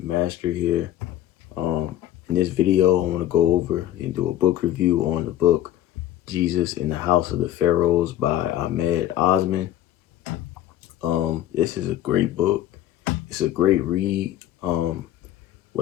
Master here. In this video, I want to go over and do a book review on the book Jesus in the House of the Pharaohs by Ahmed Osmen. This is a great book. It's a great read.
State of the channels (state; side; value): quieter; right; 12.5 dB